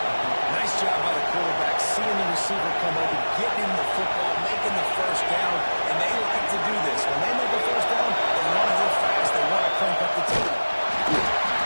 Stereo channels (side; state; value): both; inverted; correlation -1.00